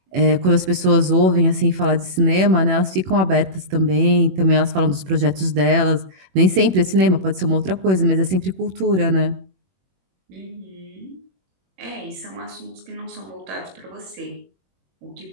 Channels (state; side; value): late; left; 21 ms